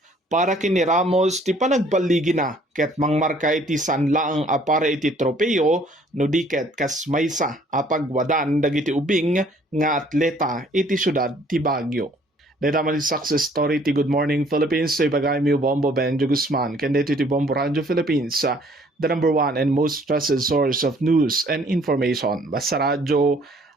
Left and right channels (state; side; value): normal; both; correlation 0.59